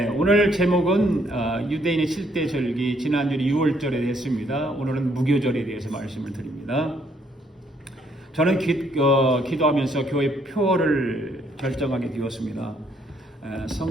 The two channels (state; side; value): normal; both; correlation 0.69